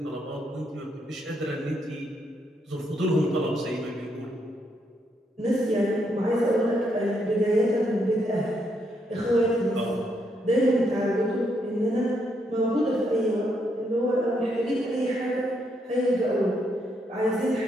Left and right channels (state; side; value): normal; both; correlation 0.76